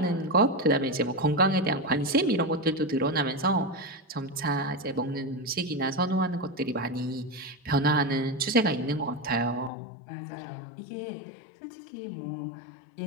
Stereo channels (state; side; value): drops out; right; at 9.7 s